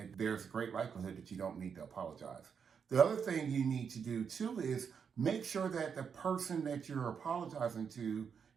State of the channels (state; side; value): quieter; left; 6.7 dB